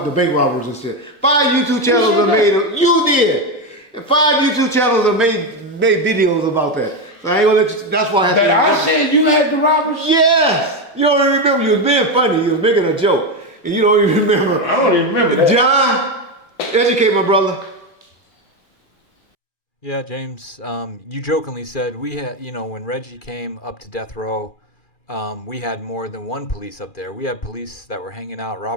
the bank robbers and shit. 5 YouTube channels have made them. You did. And 5 YouTube channels have made videos about that. So I ain't gonna let you, that's why I had that I said you had the robbers? Yes! You don't even remember. You was being funny. You was making a joke. And you don't even remember. I don't even remember that. John, educate my brother. Yeah, James, you jokingly said we had, when Reggie came up to death row, we had more than one police up there. We had police that were hanging out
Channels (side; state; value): right; late; 2.4 ms